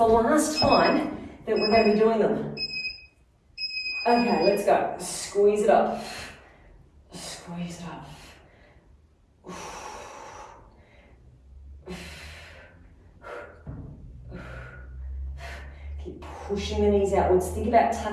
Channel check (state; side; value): identical; both; correlation 1.00